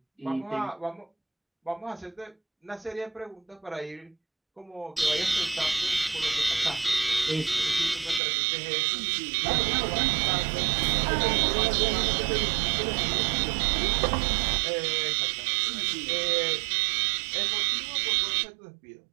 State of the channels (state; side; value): drops out; left; at 8.2 s